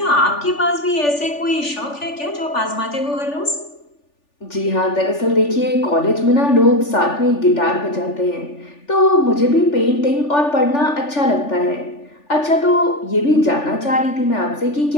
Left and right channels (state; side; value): late; right; 3.4 ms